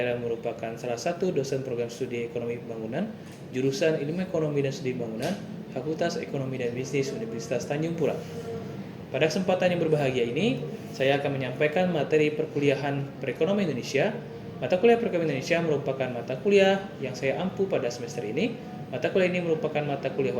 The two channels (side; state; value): both; identical; correlation 1.00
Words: merupakan salah satu dosen program studi Ekonomi Pembangunan, jurusan Ilmu Ekonomi dan Studi Bangunan, Fakultas Ekonomi dan Bisnis Universitas Tanjung Pura. Pada kesempatan yang berbahagia ini, saya akan menyampaikan materi perkuliahan Perekonomian Indonesia. Mata kuliah Perekonomian Indonesia merupakan mata kuliah yang saya ampu pada semester ini. Mata kuliah ini merupakan mata kuliah